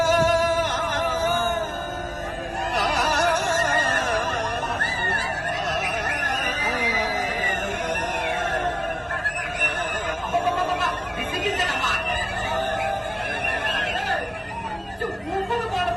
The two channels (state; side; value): identical; both; correlation 1.00